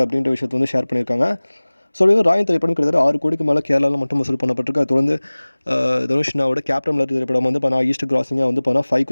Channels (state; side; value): inverted; both; correlation -1.00